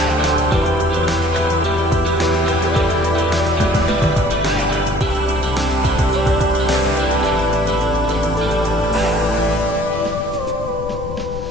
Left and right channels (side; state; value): left; noise; rumble, 9 dB below the sound